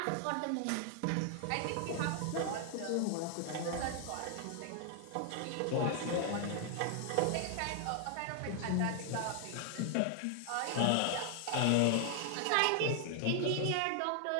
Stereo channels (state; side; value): different; both; correlation 0.00